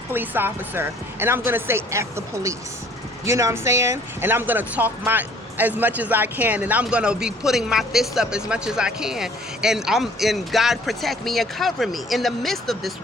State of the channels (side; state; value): both; normal; correlation 0.56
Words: police officer, and I'm gonna say, F the police. You know what I'm saying? And I'm gonna talk as much as I can, and I'm gonna be putting my fists up as much as I can. And God protect me and cover me in the midst of this